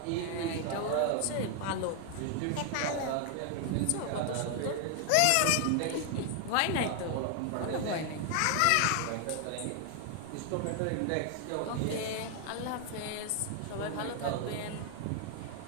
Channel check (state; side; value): different; both; correlation 0.00